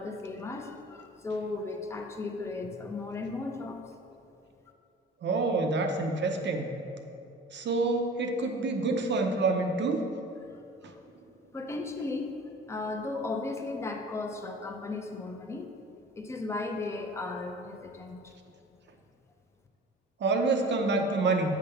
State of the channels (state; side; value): normal; both; correlation 0.42